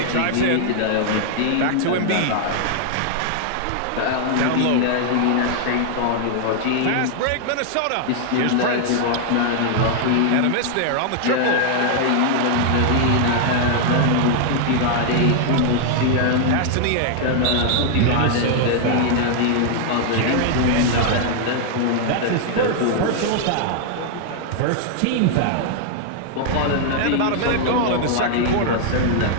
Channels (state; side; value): different; both; correlation 0.00